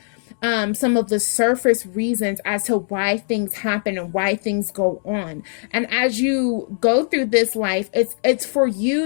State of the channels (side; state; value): right; silent; 62 dB below the other